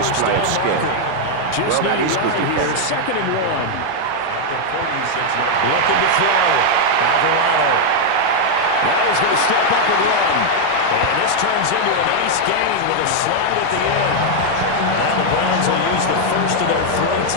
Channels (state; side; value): different; both; correlation 0.00